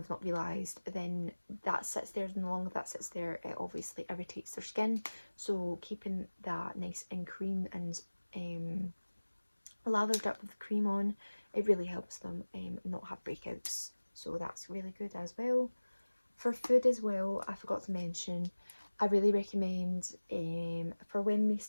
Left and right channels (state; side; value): inverted; both; correlation -1.00